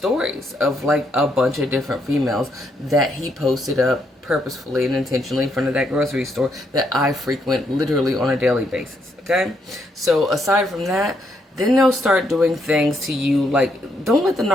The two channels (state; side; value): normal; both; correlation 0.76